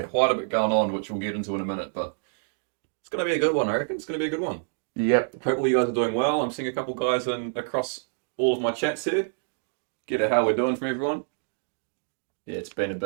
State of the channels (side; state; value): left; silent; digital silence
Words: quite a bit going on, which we'll get into in a minute, but it's going to be a good one. I reckon it's going to be a good one. Yep. Hopefully, you guys are doing well. I'm seeing a couple guys across all of my chats here. Get at how we're doing from everyone. Yeah, it's been a